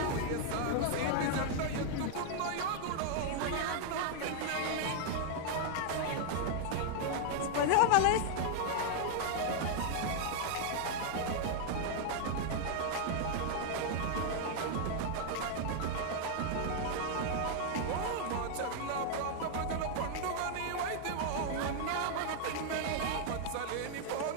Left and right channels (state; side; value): different; both; correlation 0.00